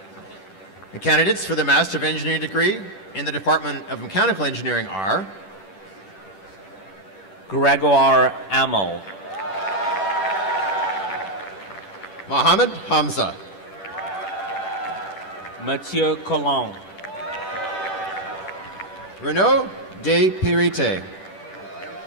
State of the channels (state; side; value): late; right; 10 ms